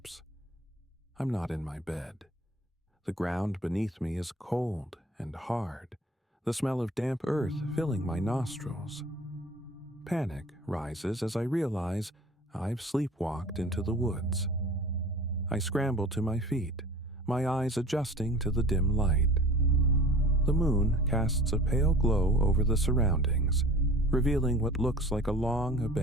I'm not in my bed. The ground beneath me is cold and hard, the smell of damp earth filling my nostrils. Panic rises as I realize I've sleepwalked into the woods. I scramble to my feet, my eyes adjusting to the dim light. The moon casts a pale glow over the surroundings, revealing what looks like a long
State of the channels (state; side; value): normal; both; correlation 0.43